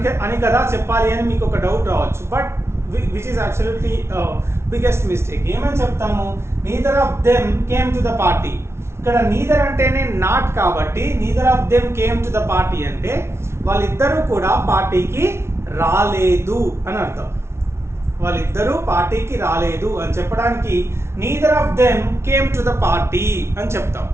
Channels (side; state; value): left; late; 0.13 ms